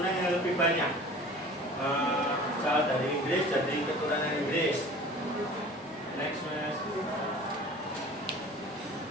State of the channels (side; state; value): both; normal; correlation 0.43